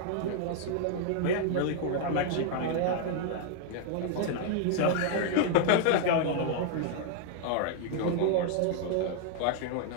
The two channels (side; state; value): both; different; correlation 0.00